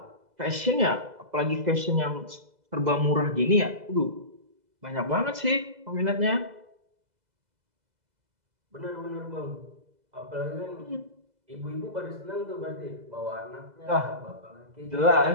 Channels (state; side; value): late; left; 2.0 ms